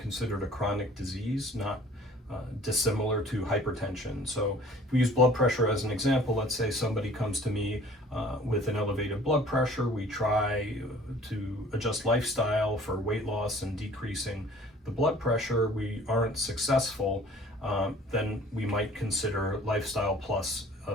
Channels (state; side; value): normal; both; correlation 0.51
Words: a chronic disease, not dissimilar to hypertension. So, if we use blood pressure as an example, let's say somebody comes to me with an elevated blood pressure. We try to adjust lifestyle for weight loss and decreasing the blood pressure. We aren't successful, then we might consider lifestyle plus